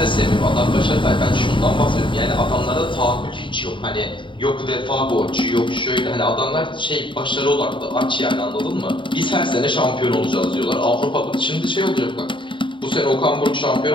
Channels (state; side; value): late; right; 0.24 ms